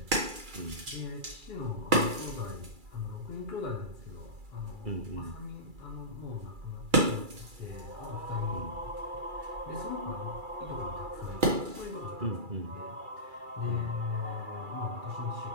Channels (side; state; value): left; late; 2.3 ms